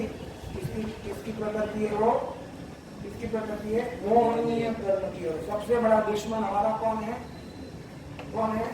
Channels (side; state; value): both; identical; correlation 1.00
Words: किसकी प्रकृति है? वो किसकी प्रकृति है? मोहनीय कर्म की। और सबसे बड़ा दुश्मन हमारा कौन है? कौन है?